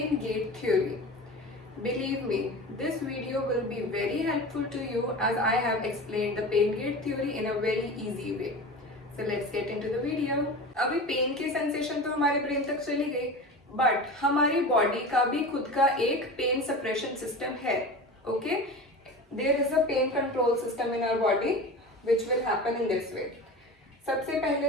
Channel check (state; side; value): normal; both; correlation 0.32